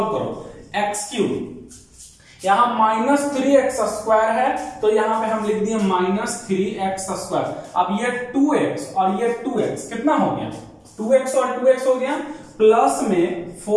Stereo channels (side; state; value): both; identical; correlation 1.00